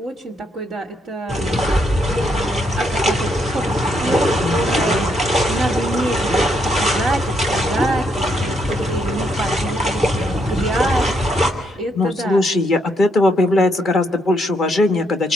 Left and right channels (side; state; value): both; normal; correlation 0.75